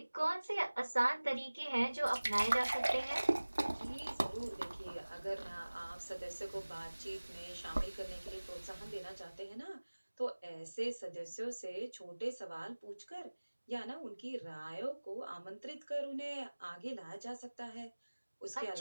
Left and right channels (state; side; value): inverted; both; correlation -1.00